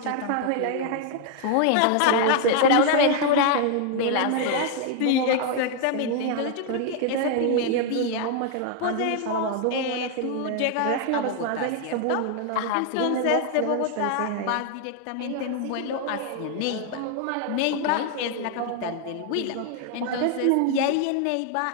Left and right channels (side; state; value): both; different; correlation 0.00